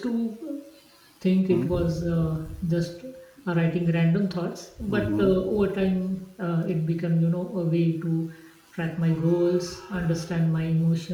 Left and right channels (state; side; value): identical; both; correlation 1.00